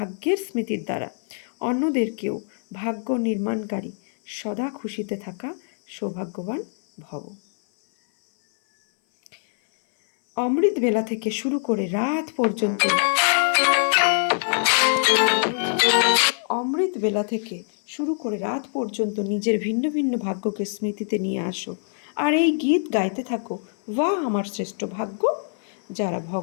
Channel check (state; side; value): silent; right; 59 dB below the other